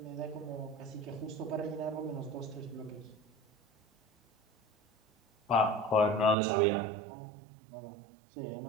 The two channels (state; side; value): drops out; left; at 6.4 s